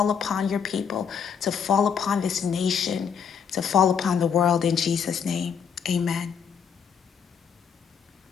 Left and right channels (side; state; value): right; quieter; 7.1 dB